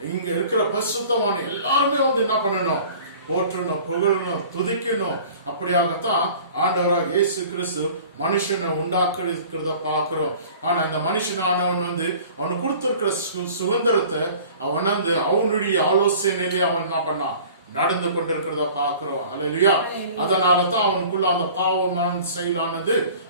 இங்க இருக்கிற பரிசுத்தமான எல்லாருமே என்ன பண்ணணும், போற்றணும், புகழணும், துதிக்கணும். அப்படியாகத்தான் ஆண்டவராக இயேசு கிறிஸ்து மனுஷனை உண்டாக்குறத பாக்குறோம். ஆனா இந்த மனுஷனானவன் அவனுக்கு கொடுத்திருக்கிற சுதந்திரத்தை அவன் அவனுடைய ஆலோசனையிலே அவன் என்ன பண்ணான், நடந்து கொண்டிருக்கிறத பாக்குறோம். ஹல்லேலூயா. அதனாலதான் அவனுக்குள்ள அந்த பாவமான செயலானது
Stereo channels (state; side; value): inverted; both; correlation -0.46